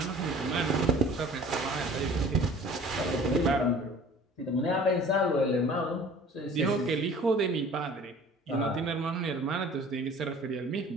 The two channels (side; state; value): both; normal; correlation 0.47